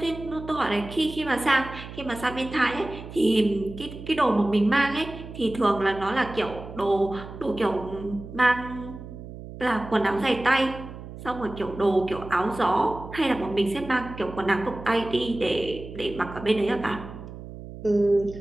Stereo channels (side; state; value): right; noise; hum, 13 dB below the sound